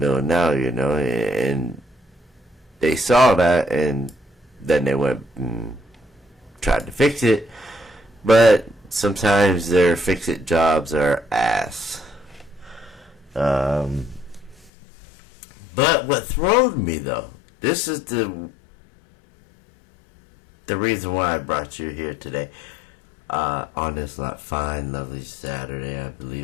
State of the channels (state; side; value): drops out; right; at 14.7 s